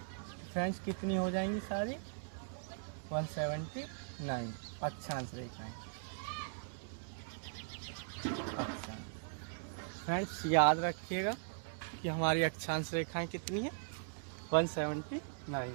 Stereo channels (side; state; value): left; silent; digital silence